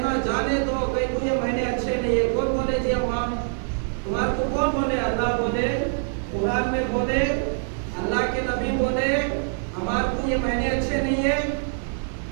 جانے دو، کہیں کو یہ مہینے اچھے نہیں ہے۔ کون بولے جی اماں تمہارے کو کون بولے؟ اللہ بولے، قرآن میں بولے، اللہ کے نبی بولے ہمارے کو یہ مہینے اچھے نہیں ہے۔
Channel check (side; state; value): left; silent; digital silence